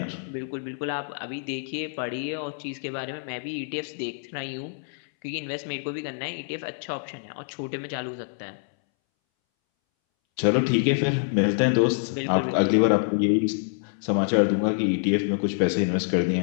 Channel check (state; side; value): silent; right; 61 dB below the other